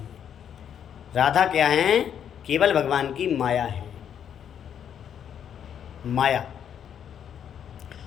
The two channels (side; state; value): right; quieter; 8.8 dB